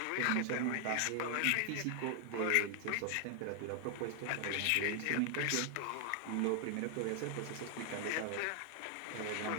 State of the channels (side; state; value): both; different; correlation 0.00